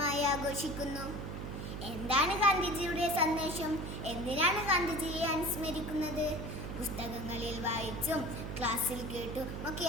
ആഘോഷിക്കുന്നു. എന്താണ് ഗാന്ധിജിയുടെ സന്ദേശം? എന്തിനാണ് ഗാന്ധിജിയെ അനുസ്മരിക്കുന്നത്? പുസ്തകങ്ങളിൽ വായിച്ചും ക്ലാസ്സിൽ കേട്ടും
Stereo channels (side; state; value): right; noise; hum, 6 dB below the sound